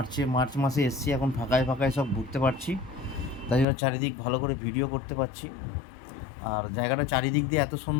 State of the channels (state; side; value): drops out; right; at 3.7 s